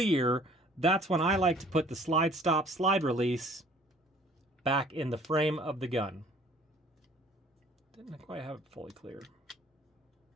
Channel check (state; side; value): normal; both; correlation 0.54